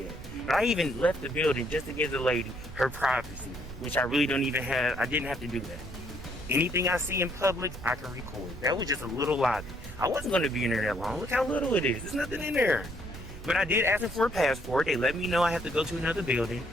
But I even left the building just to give the lady her privacy, which I really don't even have. I didn't have to do that. Anything I see in public, I can record. That was just a little lobby. I wasn't going to be in there that long. Look how little it is. There's nothing in there. But I did ask them for a passport. They let me know I have to go to another building.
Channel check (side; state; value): right; noise; rumble, 13 dB below the sound